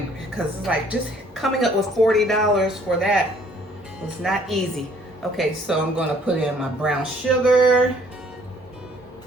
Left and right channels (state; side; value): normal; both; correlation 0.60